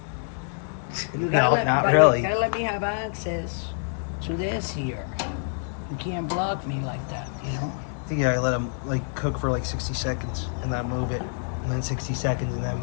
You No, not really. You gotta let me have access to this here. You can't block me like that, you know? I think I let them like cook for like 60 seconds and then move it. And then 60 seconds and then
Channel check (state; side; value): silent; right; 61 dB below the other